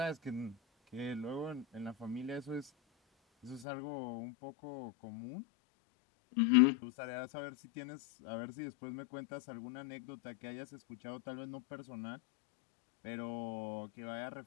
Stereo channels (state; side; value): drops out; right; at 3.7 s